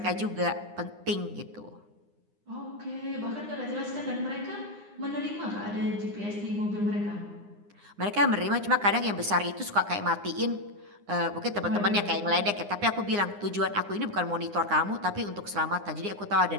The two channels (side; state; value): left; late; 9.8 ms